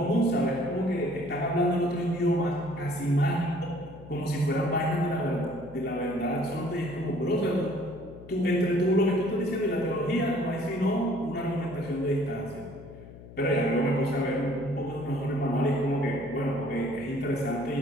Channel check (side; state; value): left; noise; hum, 17 dB below the sound